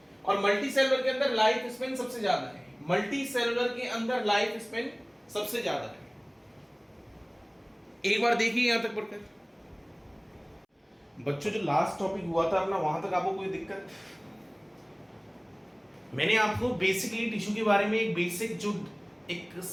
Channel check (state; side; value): identical; both; correlation 1.00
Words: और मल्टी सेलुलर के अंदर लाइफ स्पेन सबसे ज्यादा है, मल्टी सेलुलर के अंदर लाइफ स्पेन सबसे ज्यादा है। एक बार देखिए यहां तक पढ़कर। बच्चों जो लास्ट टॉपिक हुआ था ना, वहां तक आपको कोई दिक्कत? मैंने आपको बेसिकली टिश्यू के बारे में एक बेसिक जो एक